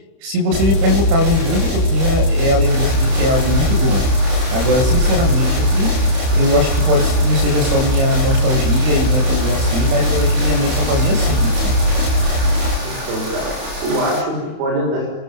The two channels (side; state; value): left; late; 31 ms